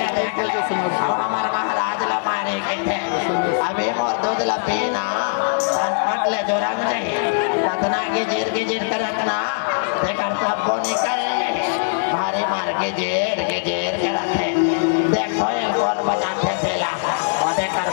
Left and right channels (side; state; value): right; silent; 65 dB below the other